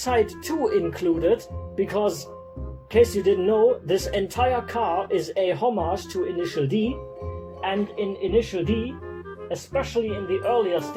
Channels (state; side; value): identical; both; correlation 1.00